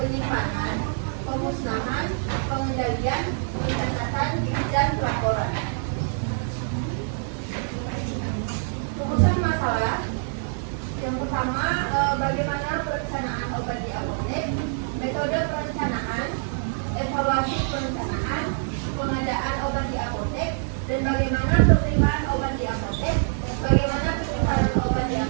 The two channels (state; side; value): silent; left; digital silence